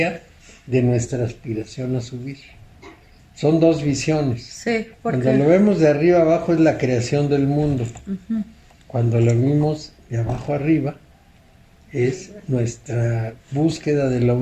de nuestra aspiración a subir. Son dos visiones. Sí, Cuando porque... lo vemos de arriba abajo es la creación del mundo. Ujú. Cuando lo vimos de abajo arriba es nuestra búsqueda de la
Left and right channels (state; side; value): identical; both; correlation 1.00